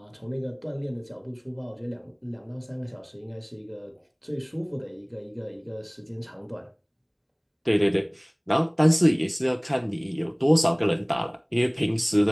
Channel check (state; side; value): identical; both; correlation 1.00